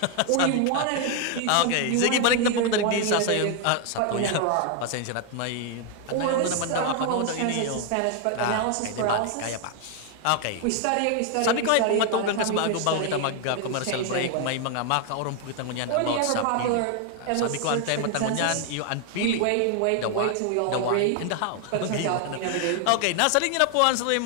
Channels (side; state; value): both; different; correlation 0.00